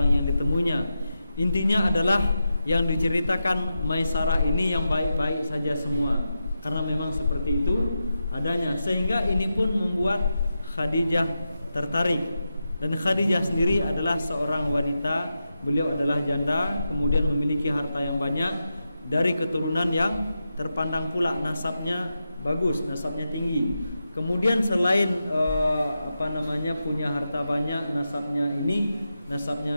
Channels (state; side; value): inverted; both; correlation -0.89